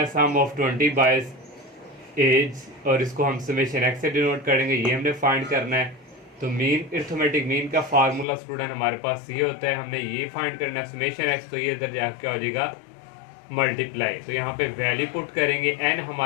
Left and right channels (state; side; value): drops out; right; at 8.2 s